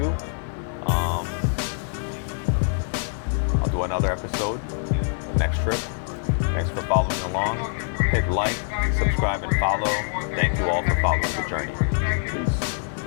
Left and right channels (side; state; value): right; silent; digital silence